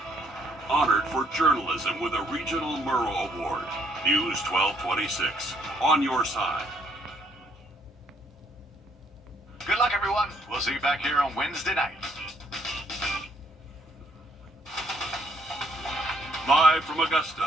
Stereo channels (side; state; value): both; normal; correlation 0.68